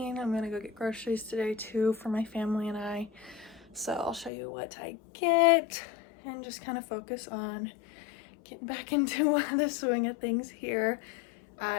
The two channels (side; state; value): right; drops out; at 4.3 s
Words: I'm gonna go get groceries today too for my family and I. So I'll show you what I get and just kind of focus on getting back into the swing of things here.